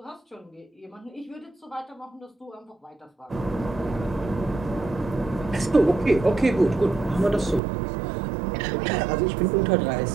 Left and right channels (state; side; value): drops out; left; at 7.6 s